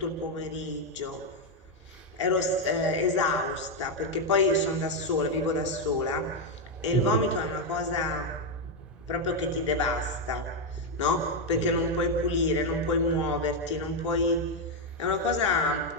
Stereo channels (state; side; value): normal; both; correlation 0.03